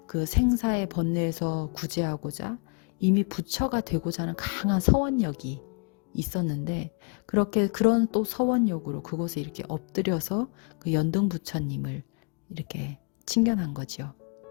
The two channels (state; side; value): quieter; right; 38.3 dB